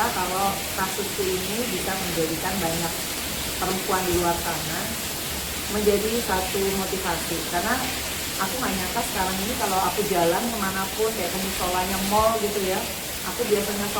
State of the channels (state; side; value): identical; both; correlation 1.00